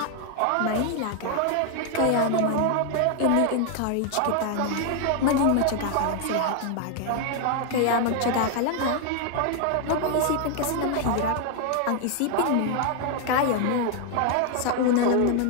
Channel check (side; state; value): both; different; correlation 0.00